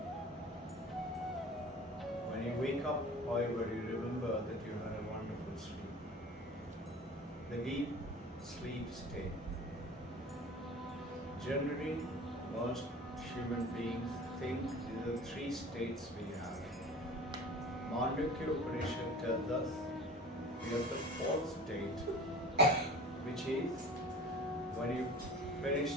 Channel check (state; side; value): normal; both; correlation 0.40